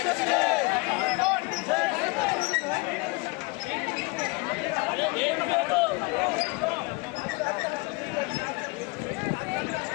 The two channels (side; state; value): right; quieter; 27.1 dB